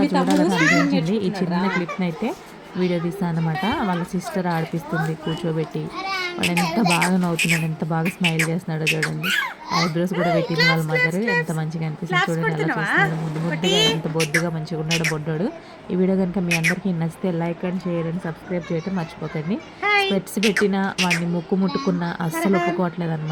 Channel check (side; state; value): both; identical; correlation 1.00